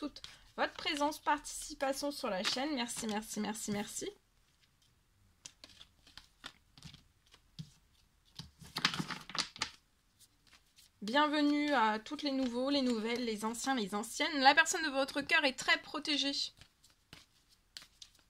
votre présence, participation sur la chaîne. Merci. Bienvenue à toutes les nouveaux, les nouvelles, les anciens, les anciennes. La personne de votre cœur est très protégée.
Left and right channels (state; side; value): identical; both; correlation 1.00